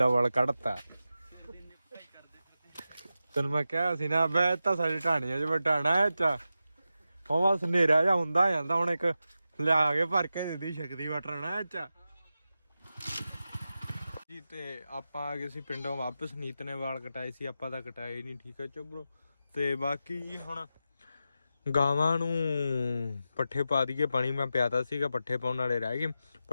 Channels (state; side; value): inverted; both; correlation -0.90